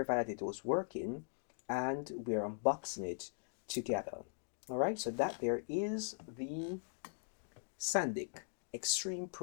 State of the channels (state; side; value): silent; right; digital silence